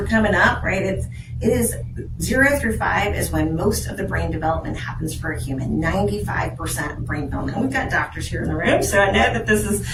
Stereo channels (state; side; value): identical; both; correlation 1.00